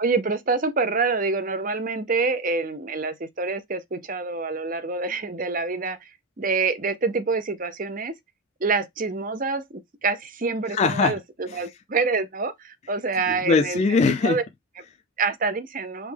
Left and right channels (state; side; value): normal; both; correlation 0.16